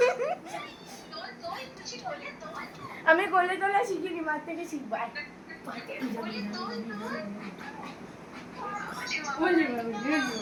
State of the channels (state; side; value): identical; both; correlation 1.00